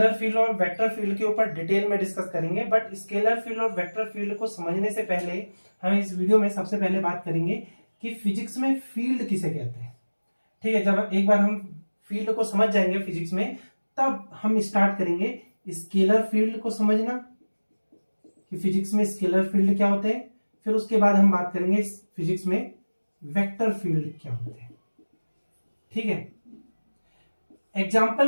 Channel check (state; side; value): inverted; both; correlation -1.00